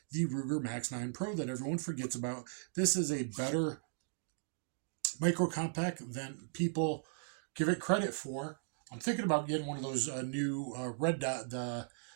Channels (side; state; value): left; silent; digital silence